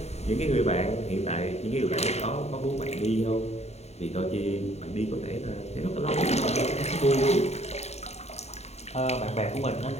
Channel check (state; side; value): late; right; 0.31 ms